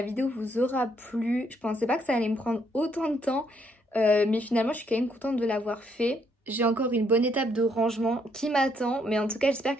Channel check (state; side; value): normal; both; correlation 0.71